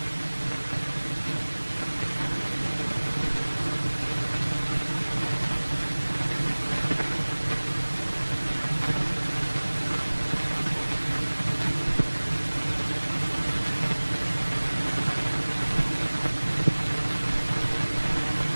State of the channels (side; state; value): both; inverted; correlation -1.00